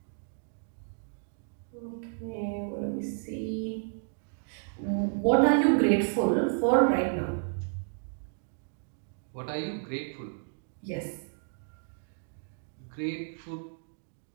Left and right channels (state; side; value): silent; left; digital silence